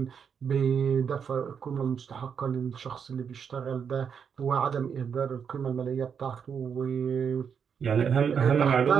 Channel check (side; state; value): left; quieter; 7.0 dB